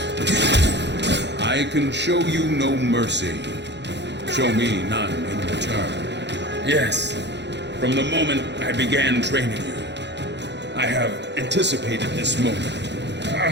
I can show you no mercy. Show me none in return. Yes, from the moment I began training you, I have anticipated this moment.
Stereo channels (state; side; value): late; left; 0.51 ms